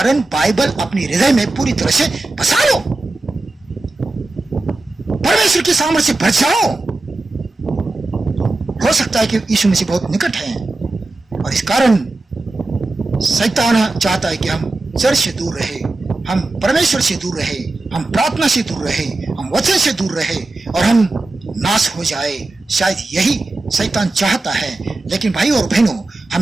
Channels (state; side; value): quieter; left; 3.1 dB